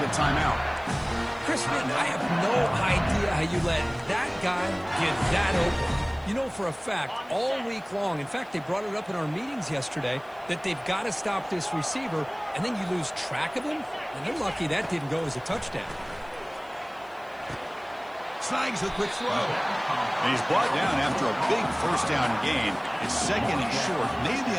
timeout. Chris, man, I have no idea how you let that guy get that open. You know for a fact, all week long, in fact, they brought it up in our meetings yesterday, that they've got to stop this receiver, and then you lose track of him, and they're lucky that didn't go as a touchdown. Snags the quick throw. And he's brought down after a big first down gain. It's second and short. Maybe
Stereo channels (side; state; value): left; noise; hiss, 30 dB below the sound